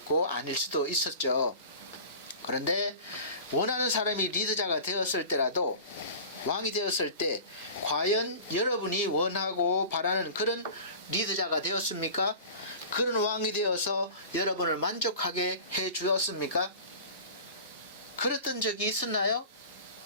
아닐 수도 있었죠. 그런데 원하는 사람이 리더자가 되었을 때라도, 왕이 되었을 때 과연 여러분이 원하고 바라는 그런 리더자가 되었습니까? 그런 왕이 되어서 여러분을 만족하게 해 주었습니까? 그랬던 적이 있었나요?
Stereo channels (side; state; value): both; inverted; correlation -0.38